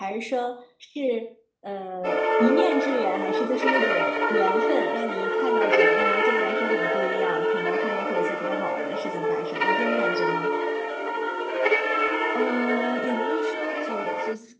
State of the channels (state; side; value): identical; both; correlation 1.00